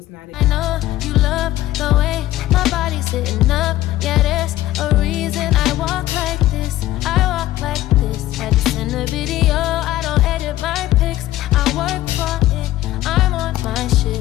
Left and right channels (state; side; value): quieter; right; 14.9 dB